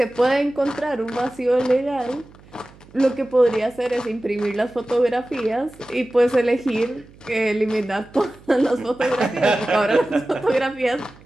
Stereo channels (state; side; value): noise; right; hum, 24 dB below the sound